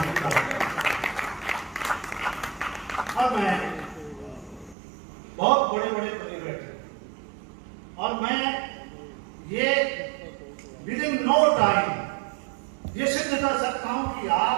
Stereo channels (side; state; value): left; drops out; at 4.8 s